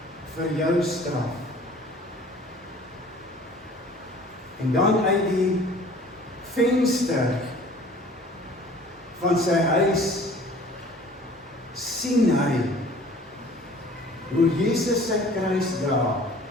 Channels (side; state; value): both; normal; correlation 0.49